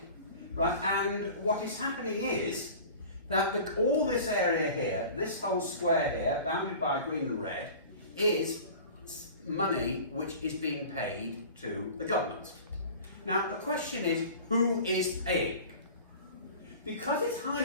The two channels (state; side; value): inverted; both; correlation -0.40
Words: right, and what is happening is that all this area here, this whole square here, bounded by green and red, is money which is being paid to the government. Now the question is, who is paying? Because it's